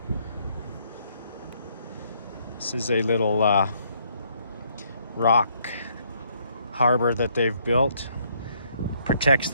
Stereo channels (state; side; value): inverted; both; correlation -0.68